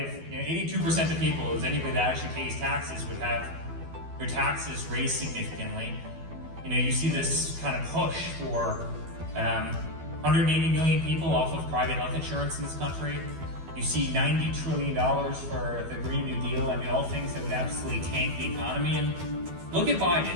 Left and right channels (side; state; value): left; late; 12 ms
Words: 82% of people, is anybody that actually pays taxes, would have their taxes raised significantly. You see this kind of push for 180 million people off of private health insurance in this country. You see $90 trillion for the Green New Deal. I mean, all things that would absolutely tank the economy. And look at